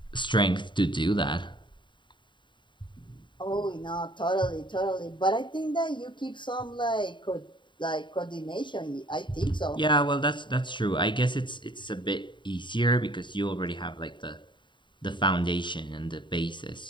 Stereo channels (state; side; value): late; right; 0.23 ms